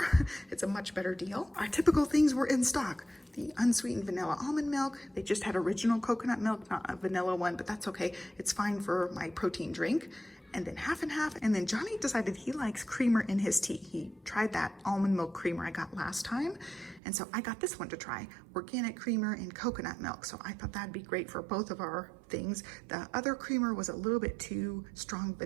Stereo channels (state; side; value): drops out; left; at 17.0 s